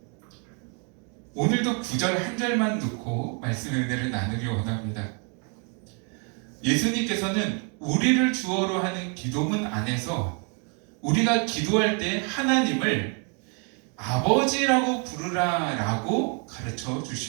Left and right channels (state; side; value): quieter; left; 37.8 dB